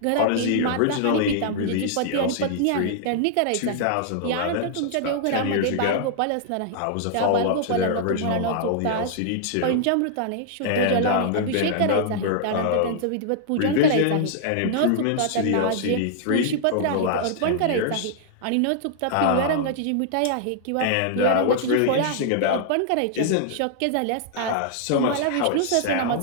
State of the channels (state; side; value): different; both; correlation -0.01